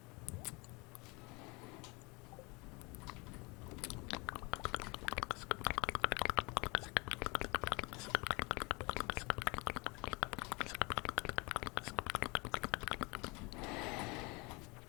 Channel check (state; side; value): quieter; right; 27.4 dB